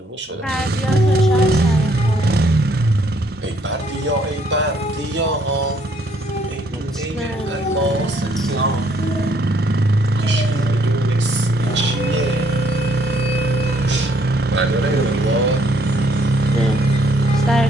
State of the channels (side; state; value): both; normal; correlation 0.67